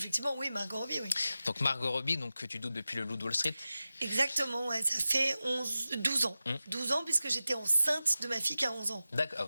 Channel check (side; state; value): both; inverted; correlation -0.94